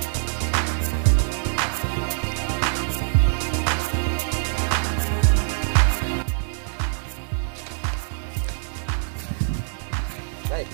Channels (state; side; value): silent; left; digital silence